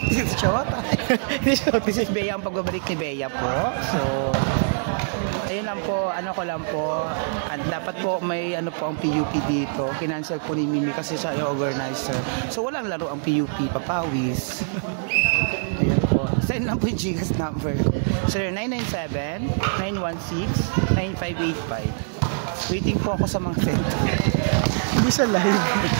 This is your This is Bea, ang pagbabalik ni Bea po. So, ayun lang po, ano ko lang po, at dapat po may ano po ang PUP dito. Kinancel po ni Mimi kasi siya yung organizer. So, walang laro ang PUP, papawis. Ayun po. Send lang po yung Gcash number ko. 0997-916-9585. Waiting po ako sa mga send. Hindi siya live.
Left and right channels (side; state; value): left; silent; digital silence